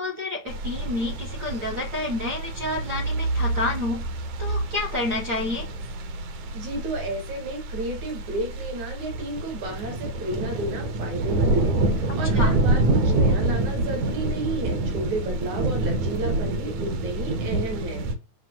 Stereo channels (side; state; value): left; late; 9.2 ms